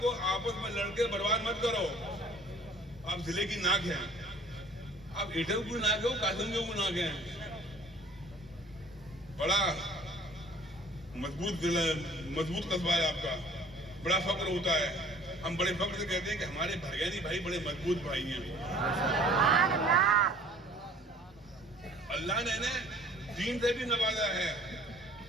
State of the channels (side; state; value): both; normal; correlation 0.52